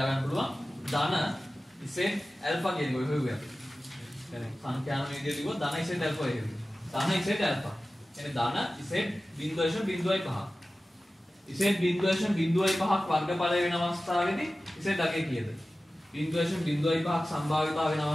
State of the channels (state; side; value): normal; both; correlation 0.96